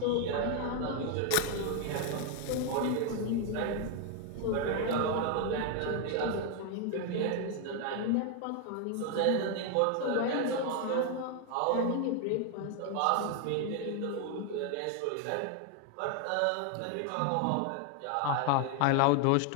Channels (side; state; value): both; different; correlation 0.01